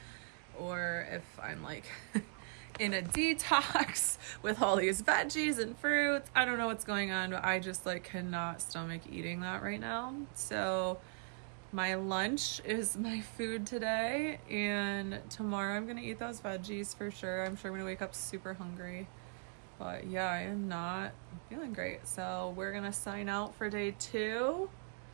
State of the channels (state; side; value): silent; left; 52 dB below the other